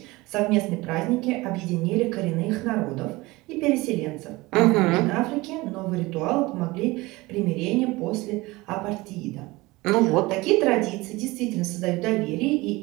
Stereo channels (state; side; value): quieter; left; 21.5 dB